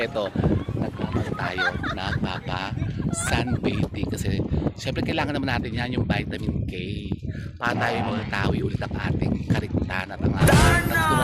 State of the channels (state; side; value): identical; both; correlation 1.00